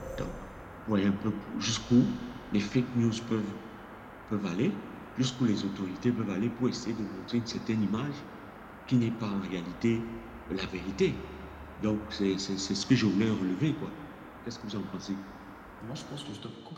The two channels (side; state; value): both; identical; correlation 1.00